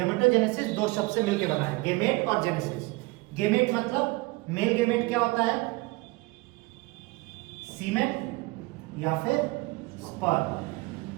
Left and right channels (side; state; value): left; quieter; 23.5 dB